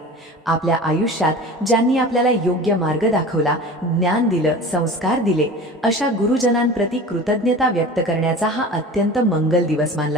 आपल्या आयुष्यात ज्यांनी आपल्याला योग्य मार्ग दाखवला, ज्ञान दिलं, संस्कार दिले, अशा गुरुजनांप्रती कृतज्ञता व्यक्त करण्याचा हा अत्यंत मंगल दिवस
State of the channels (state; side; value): normal; both; correlation 0.37